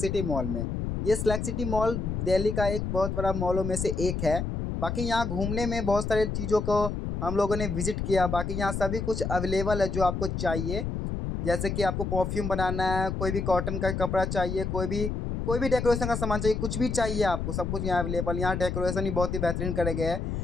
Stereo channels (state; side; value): noise; left; rumble, 3 dB below the sound